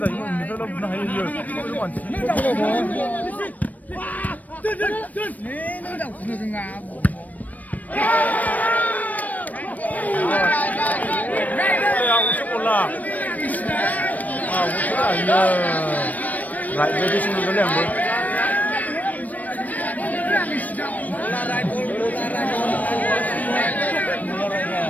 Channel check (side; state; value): right; late; 0.076 ms